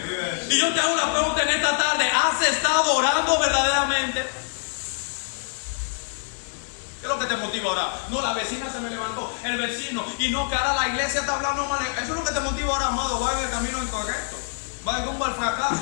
Vive Jesús. Y yo te hago una pregunta en esta tarde: ¿has estado adorando verdaderamente? ¿Qué es lo que te motiva a orar? No, la vecina se me levantó, el vecino, y no, que ahora la iglesia está hablando mal. Eso es lo que te motiva ahora, amado. Va en el camino incorrecto, va en rumbo al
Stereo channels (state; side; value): silent; right; digital silence